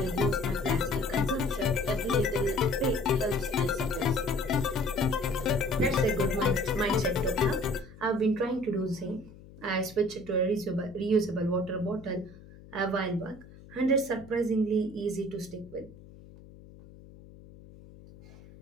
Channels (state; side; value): noise; left; hum, 20 dB below the sound